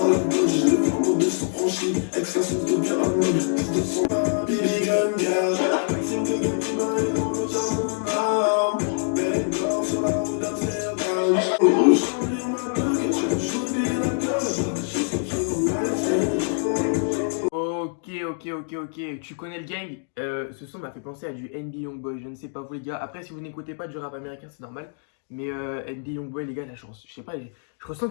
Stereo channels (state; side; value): silent; right; digital silence